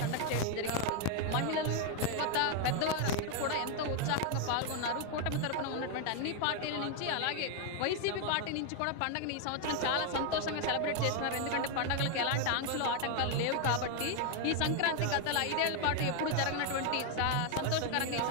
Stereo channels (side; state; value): both; different; correlation 0.01